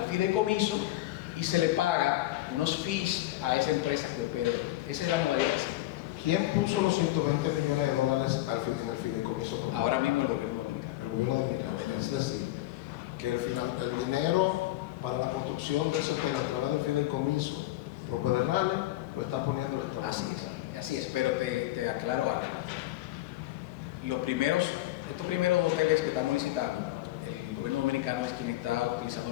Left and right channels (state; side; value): quieter; right; 16.4 dB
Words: fideicomiso y se le paga unos fees a esa empresa que opera el hotel. Esa es la modalidad que sigue. ¿Quién puso los 120 millones de dólares en el fideicomiso? Ahora mismo el gobierno dominicano. El gobierno dominicano. Es decir, que el dinero para la construcción de ese hotel a través del fideicomiso Propedernales lo está poniendo el Estado. Así es, pero te aclaro algo. Estos primeros hoteles que estamos licitando, el gobierno dominicano es quien está utilizando